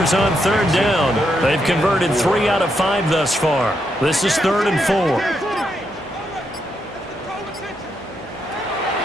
on 3rd down. They've converted 3 out of 5 thus far. This is 3rd and 4.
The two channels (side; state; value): both; normal; correlation 0.80